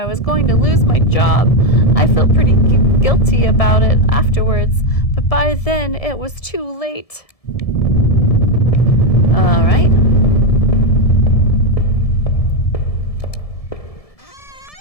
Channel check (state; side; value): late; right; 1.7 ms